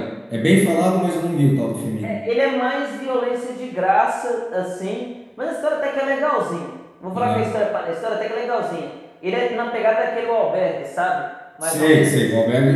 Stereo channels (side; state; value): both; identical; correlation 1.00